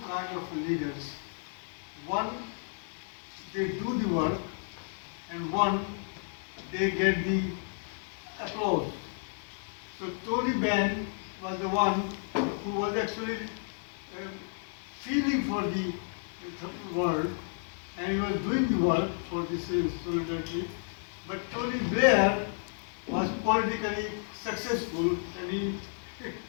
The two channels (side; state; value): right; silent; 56 dB below the other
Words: kinds of leaders. One, they do the work, and one, they get the applause. So Tony Benn was the one who was actually feeling for the world, and he was doing the work for this solidarity. But Tony Blair was politically successful, and he